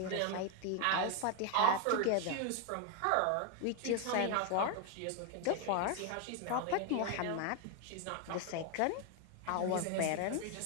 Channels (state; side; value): different; both; correlation 0.01